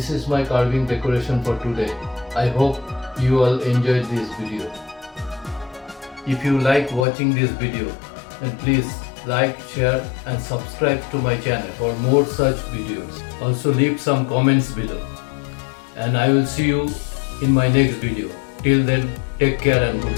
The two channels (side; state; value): right; drops out; at 7.1 s